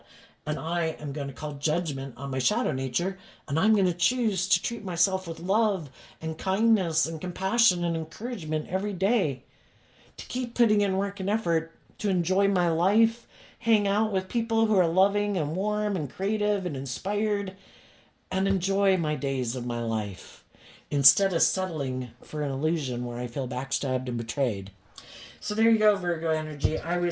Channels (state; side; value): identical; both; correlation 1.00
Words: and I am going to call judgment on my shadow nature, and I'm going to choose to treat myself with love and kindness and compassion and encouragement every day, to keep putting in work and effort to enjoy my life, hang out with people who are loving and warm and creative and inspired, and enjoy my days of my life instead of settling for an illusion where I feel backstabbed and betrayed. So there you go, Virgo energy. I